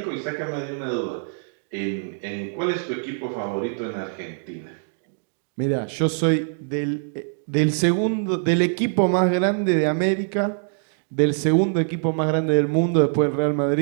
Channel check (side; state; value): left; silent; digital silence